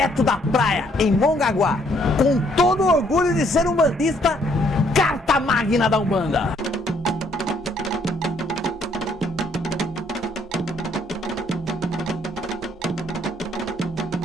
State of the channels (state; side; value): normal; both; correlation 0.67